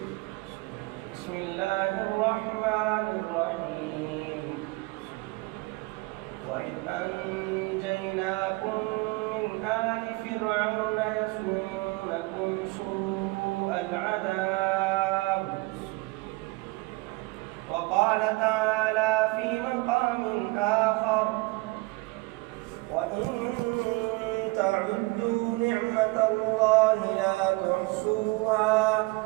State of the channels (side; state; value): left; quieter; 23.2 dB